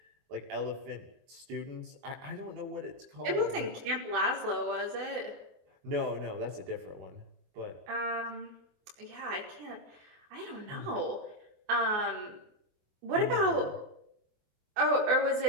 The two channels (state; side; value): late; left; 24 ms